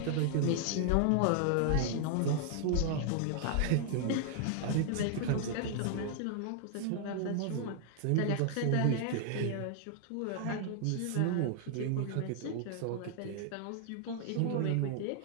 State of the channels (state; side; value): different; both; correlation 0.00